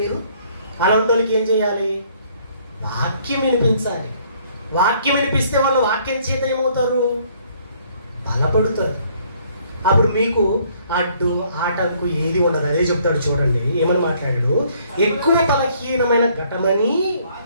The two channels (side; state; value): both; inverted; correlation -0.63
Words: చేయాలి? వాక్యం వినిపించాలి. వాక్యం వినిపిస్తే వాళ్ళు వాక్యం చేత ఏమవుతారు? బలపడుతారు. అప్పుడు మీకు అడ్డు ఆటంకు ఏది ఉండదు. అదే చెప్తాడు చూడండి, ఏమని మాట్లాడాడు? ఎక్కువ బలహీనమైన ఘటమని